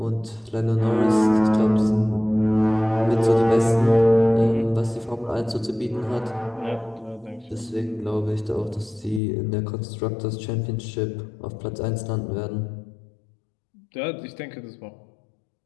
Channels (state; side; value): drops out; right; at 9.2 s